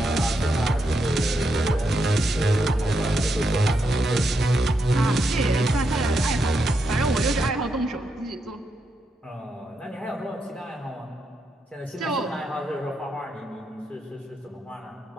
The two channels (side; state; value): both; normal; correlation 0.83